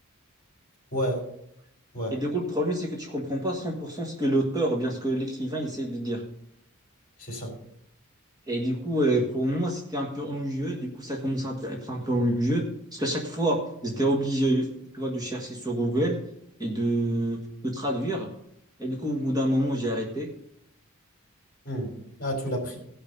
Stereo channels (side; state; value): both; normal; correlation 0.58